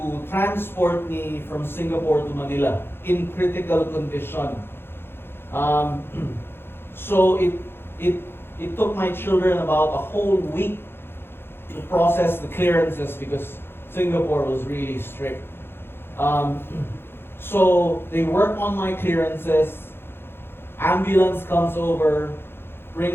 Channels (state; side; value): late; right; 0.11 ms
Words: transport me from Singapore to Manila in critical condition. So it took my children about a whole week to process the clearances because Singapore was really strict. So they work on my clearances, ambulance comes over,